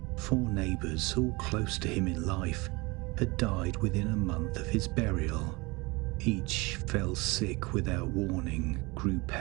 4 neighbours, all close to him in life, had died within a month of his burial. Each fell sick without warning, grew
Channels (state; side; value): quieter; left; 24.9 dB